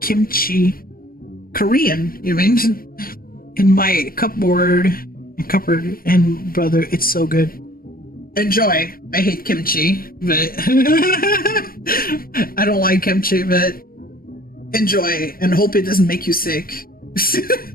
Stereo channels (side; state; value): right; late; 0.42 ms